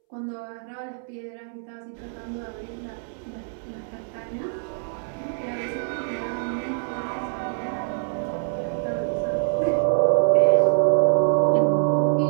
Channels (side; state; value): left; silent; 62 dB below the other